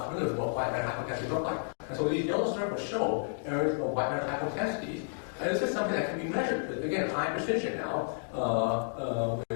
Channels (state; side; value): silent; right; digital silence